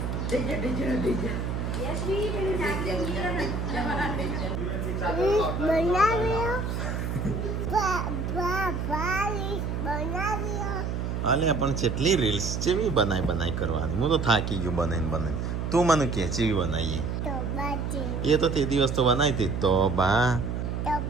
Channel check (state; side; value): noise; right; hum, 2 dB below the sound